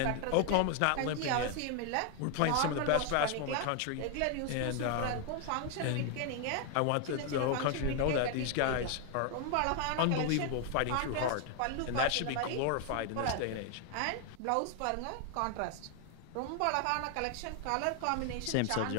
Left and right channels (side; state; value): both; different; correlation 0.00